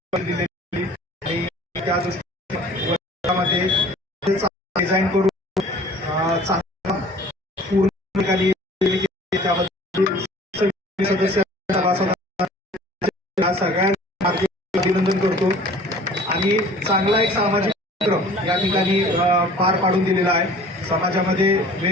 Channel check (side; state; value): both; normal; correlation 0.48